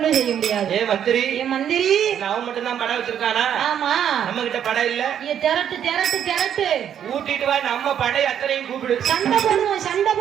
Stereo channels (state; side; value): quieter; left; 9.3 dB